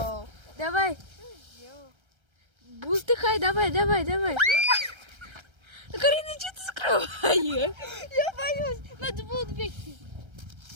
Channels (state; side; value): late; left; 1.3 ms